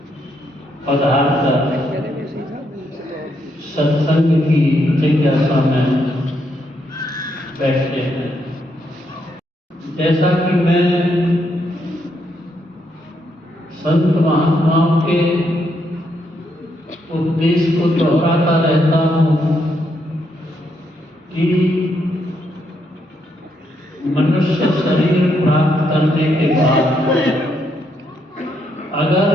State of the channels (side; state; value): both; normal; correlation 0.77